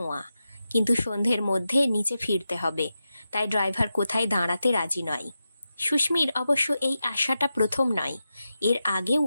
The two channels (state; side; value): inverted; both; correlation -0.90